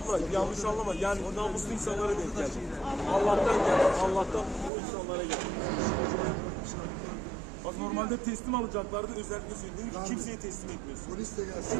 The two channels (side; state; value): left; drops out; at 4.7 s